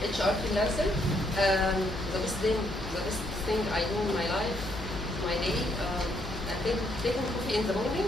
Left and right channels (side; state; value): both; normal; correlation 0.73